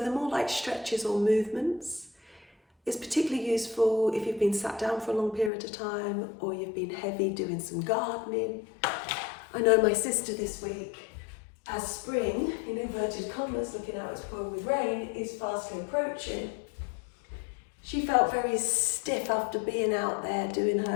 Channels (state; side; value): drops out; right; at 5.5 s